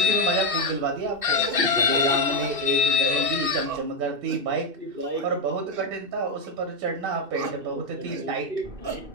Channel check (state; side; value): late; left; 2.7 ms